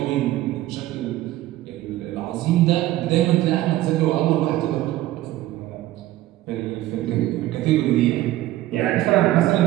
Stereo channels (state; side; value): quieter; left; 15.4 dB